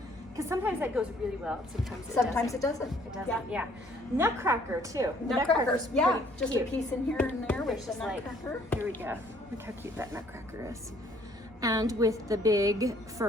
because sometimes that goes really well. Sometimes It doesn't. It doesn't. Yeah. Nutcracker too. Nutcrackers. Yeah, pretty just cute. a piece in here and there with It's the just like, nutcracker. here we go. Look how cute that nutcracker is. And with the big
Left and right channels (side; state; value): both; normal; correlation 0.61